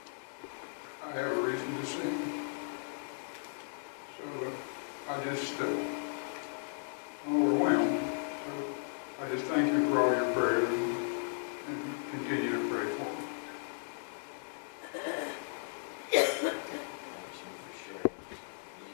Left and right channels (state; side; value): silent; right; digital silence